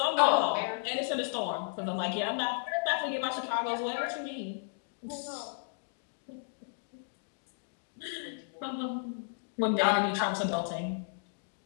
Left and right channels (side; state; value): right; silent; digital silence